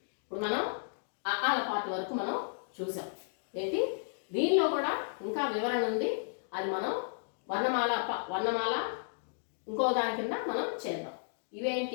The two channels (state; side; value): silent; right; digital silence